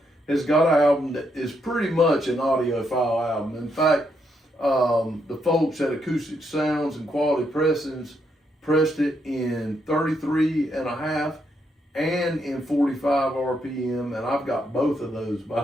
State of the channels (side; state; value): both; normal; correlation 0.78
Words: has got an album that is pretty much an audiophile album. In fact, the folks at Acoustic Sounds and Quality Pressings pressed it in 33 and a half and in 45 RPM, and I've got both of those,